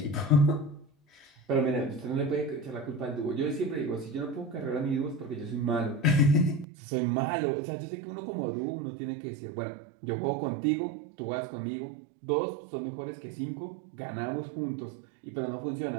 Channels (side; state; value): left; drops out; at 6.7 s